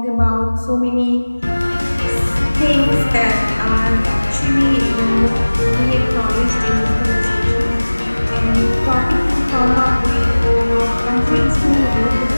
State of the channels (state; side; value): inverted; both; correlation -1.00